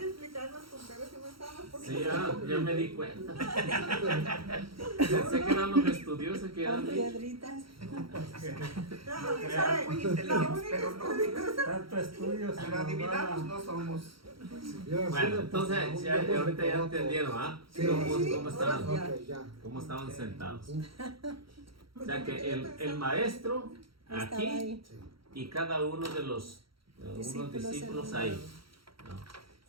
explicarnos con peras y manzanas porque Sí, ya me di cuenta. Pensé que eran los estudiosos que Con eran. piedritas. Eran muy inteligentes, pero no. Tanto estudio, se Pero nos adivinados va. no somos. Bueno, entonces ya, ahorita ya entendieron, ¿ah? Sí. ¿Cómo estaban? Ok, ya. Cómo estaban sentados. O sea que el maestro Estaba aquí ahí. y cada uno de los unos discípulos ahí. ¿no?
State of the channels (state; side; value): late; left; 0.74 ms